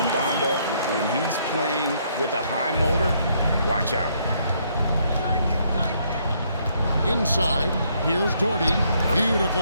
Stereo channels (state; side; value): inverted; both; correlation -0.70